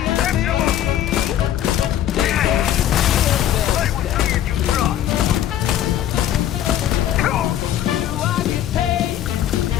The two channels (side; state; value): right; quieter; 11.5 dB